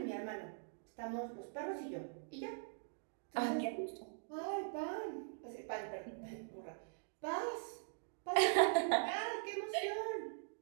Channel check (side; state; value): left; silent; digital silence